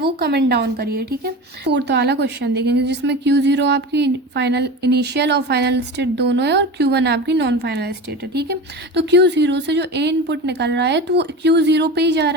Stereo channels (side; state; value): both; normal; correlation 0.29